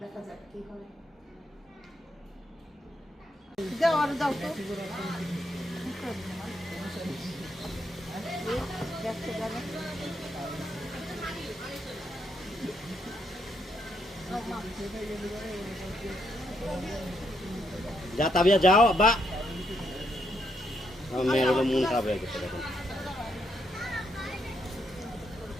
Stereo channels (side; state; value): both; normal; correlation 0.76